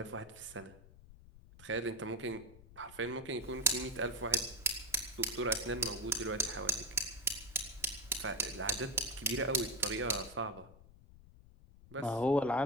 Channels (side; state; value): left; noise; rumble, 20 dB below the sound